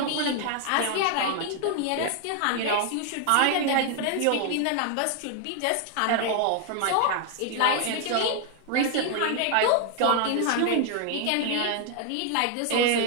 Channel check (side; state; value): both; different; correlation 0.00